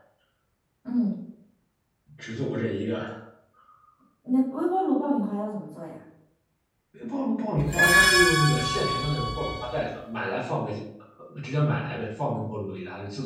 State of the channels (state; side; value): identical; both; correlation 1.00